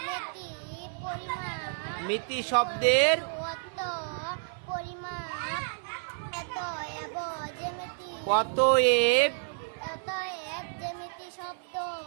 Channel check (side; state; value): left; silent; 58 dB below the other